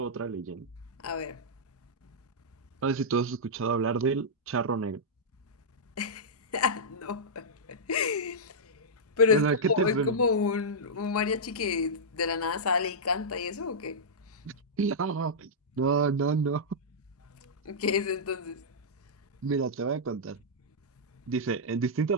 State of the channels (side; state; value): both; normal; correlation -0.10